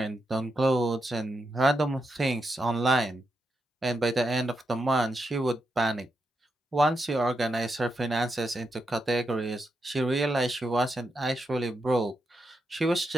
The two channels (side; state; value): both; normal; correlation 0.85